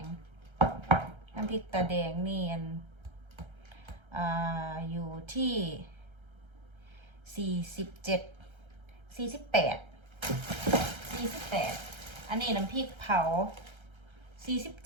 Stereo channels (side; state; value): left; late; 1.3 ms